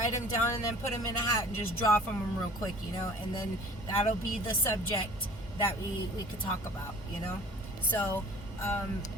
them down and then put them in a hat and just draw from them real quick, you know, and then that'll be the subject that we could talk about, you know. So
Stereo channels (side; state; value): both; normal; correlation 0.47